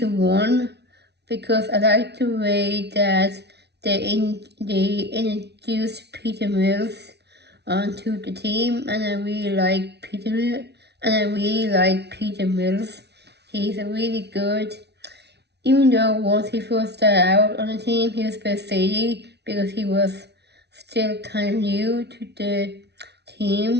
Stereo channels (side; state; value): left; late; 0.49 ms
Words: 1 because I like the way that they introduced Peter Mills onto the team, and I really like Peter Mills. He's a really good, even though once he first started out on the team, he was a bit shady because he was still kind of new to the